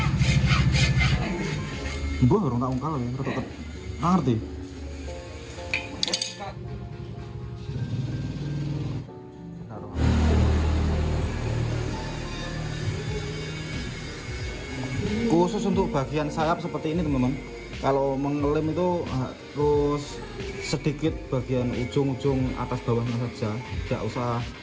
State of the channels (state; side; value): identical; both; correlation 1.00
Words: Mbah orang tak ungkal lho, rada ngerti. Khusus untuk bagian sayap seperti ini teman-teman, kalau mengelem itu harus sedikit bagian ujung-ujung atas bawahnya saja, tidak usah